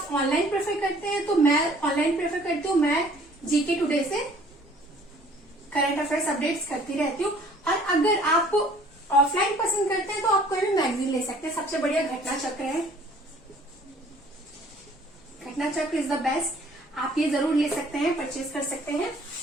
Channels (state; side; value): normal; both; correlation 0.55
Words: ऑनलाइन प्रेफर करते हैं तो मैं ऑनलाइन प्रेफर करती हूँ। मैं जीके टुडे से करंट अफेयर्स अपडेट्स करती रहती हूँ। और अगर आप ऑफलाइन पसंद करते हैं तो आप कोई भी मैगजीन ले सकते हैं। सबसे बढ़िया घटना चक्र है, घटना चक्र इज द बेस्ट। आप ये जरूर ले सकते हैं, परचेज कर सकते हैं